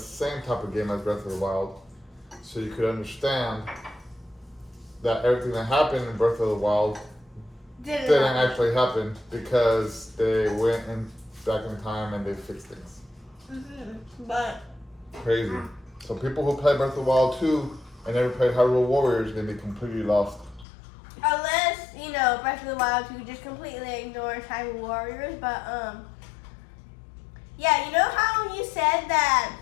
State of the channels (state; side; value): drops out; right; at 20.7 s